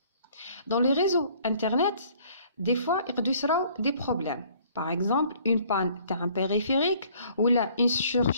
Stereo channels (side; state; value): both; inverted; correlation -0.57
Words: Dans les réseaux Internet, des fois, il y a des problèmes. Par exemple, une panne d'un périphérique ou là, une